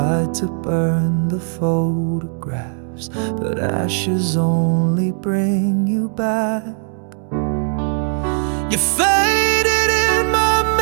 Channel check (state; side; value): silent; left; 57 dB below the other